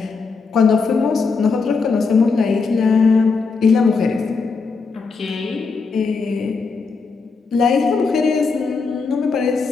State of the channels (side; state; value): right; quieter; 4.7 dB